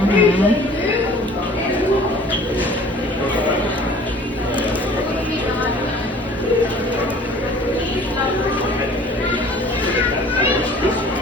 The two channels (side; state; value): both; normal; correlation 0.49